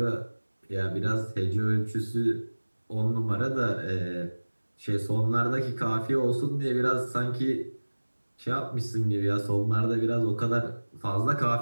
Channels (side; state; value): both; inverted; correlation -1.00